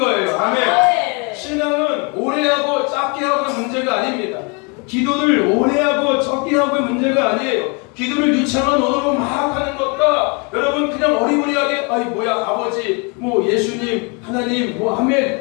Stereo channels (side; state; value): right; quieter; 32.7 dB